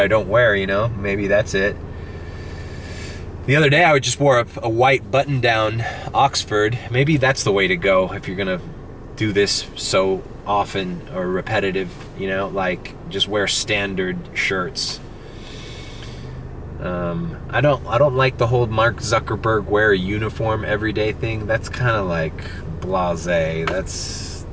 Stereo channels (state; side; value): identical; both; correlation 1.00